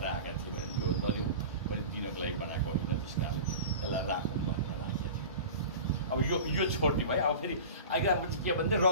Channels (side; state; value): both; inverted; correlation -0.35